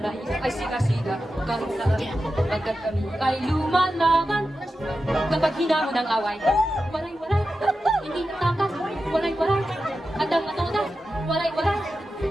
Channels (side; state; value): both; normal; correlation 0.91